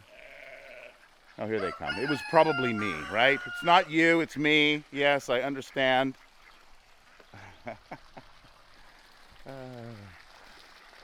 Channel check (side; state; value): both; identical; correlation 1.00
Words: Oh, here they come. It was probably me, right? It's not you, it's me. Yes, I understand. Okay.